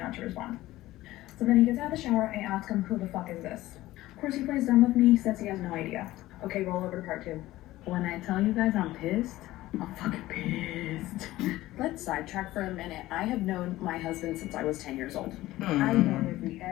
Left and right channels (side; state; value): right; quieter; 16.6 dB